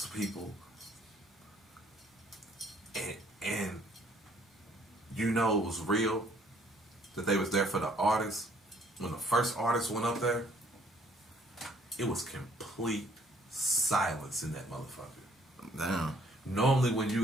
to people. And you know it was real, that they was there for the artists. When the first artist went up there, it was complete silence in that motherfucker. Damn. Normally when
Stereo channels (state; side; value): normal; both; correlation 0.62